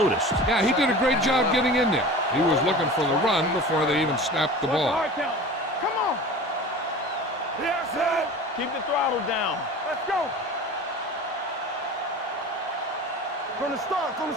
Yeah, he did a great job getting in there. He was looking for the run before they even snapped the ball. Come on. Yes, sir. Keep the throttle down. Let's go. From the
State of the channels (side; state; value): both; normal; correlation 0.37